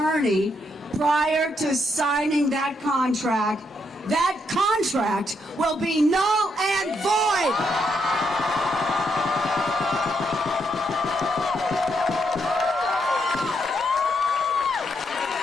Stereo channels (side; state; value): both; normal; correlation 0.77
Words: prior to signing that contract will be null and void.